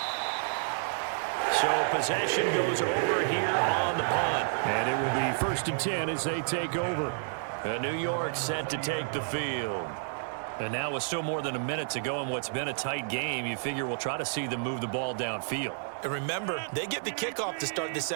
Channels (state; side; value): silent; left; digital silence